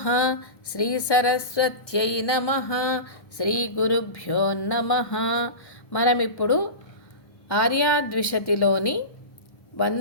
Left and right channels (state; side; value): late; right; 1.1 ms